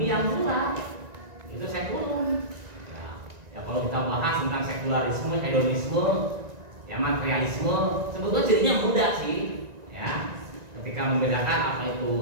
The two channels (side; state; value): left; late; 1.9 ms